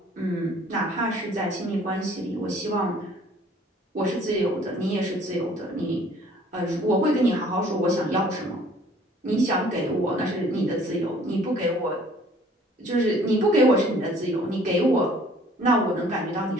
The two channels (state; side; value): normal; both; correlation 0.55